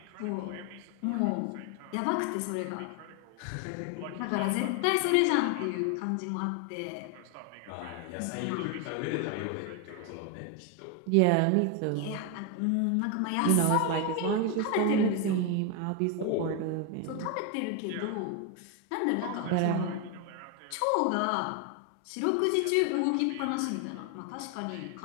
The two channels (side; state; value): both; different; correlation 0.01